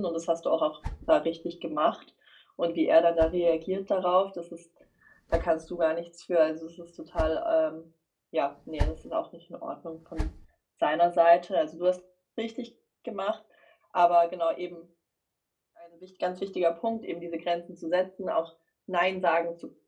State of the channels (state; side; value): identical; both; correlation 1.00